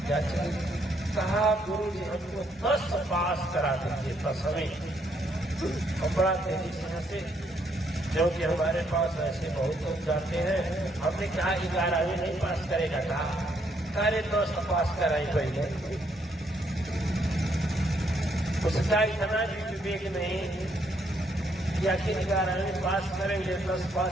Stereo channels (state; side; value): normal; both; correlation 0.72